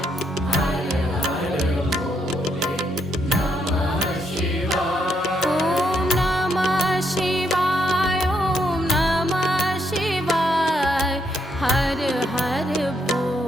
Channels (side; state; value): both; normal; correlation 0.76